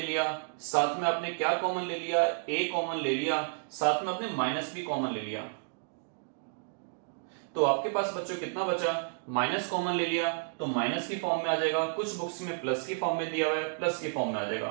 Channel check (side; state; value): left; silent; digital silence